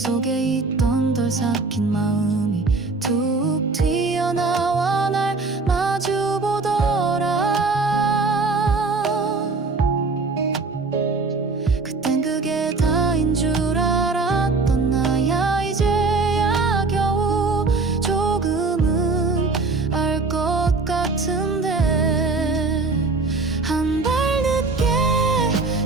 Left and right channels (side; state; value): left; quieter; 3.8 dB